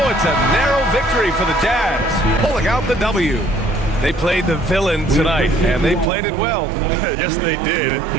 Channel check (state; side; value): drops out; left; at 6.1 s